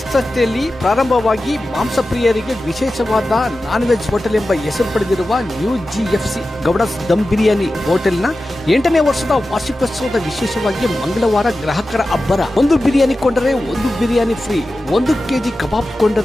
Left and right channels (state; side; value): normal; both; correlation 0.94